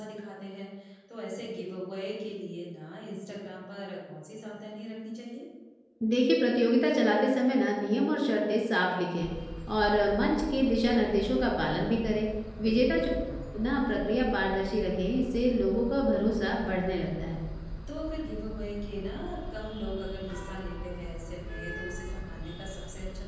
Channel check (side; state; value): both; identical; correlation 1.00